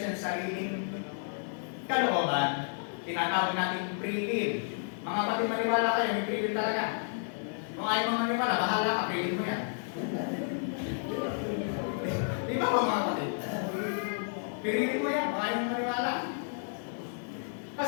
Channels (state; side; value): silent; right; 57 dB below the other